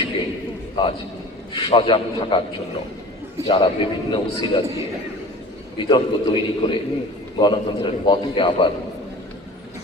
আজ সজাগ থাকার জন্য যারা বিভিন্ন উসিলা দিয়ে বিতর্ক তৈরি করে গণতন্ত্রের পথকে আবার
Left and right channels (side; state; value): both; normal; correlation 0.40